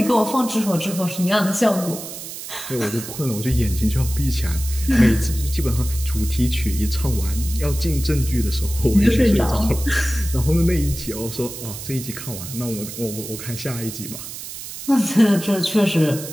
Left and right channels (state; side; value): noise; right; hiss, 10 dB below the sound